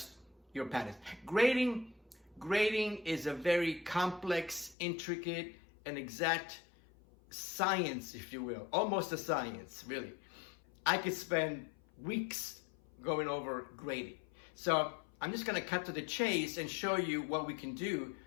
your patterns. Grading is a very complex, intricate, and exact science, if you will. Almost a science, really. I could spend weeks going over grading. So I'm just gonna cut to the chase and show you what we can do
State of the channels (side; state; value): right; drops out; at 4.8 s